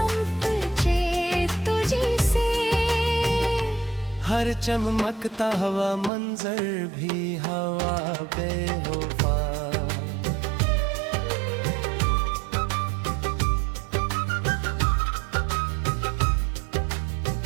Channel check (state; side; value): drops out; left; at 6.1 s